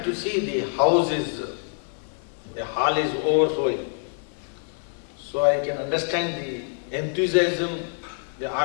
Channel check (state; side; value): silent; right; 59 dB below the other